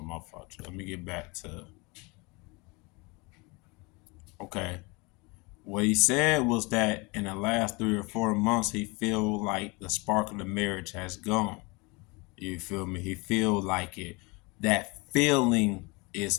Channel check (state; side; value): quieter; right; 27.3 dB